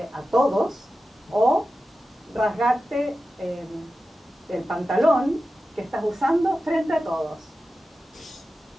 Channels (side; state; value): both; normal; correlation 0.93